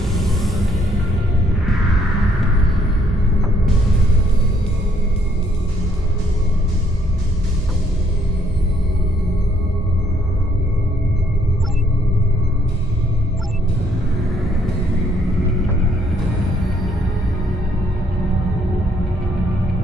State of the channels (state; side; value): normal; both; correlation 0.68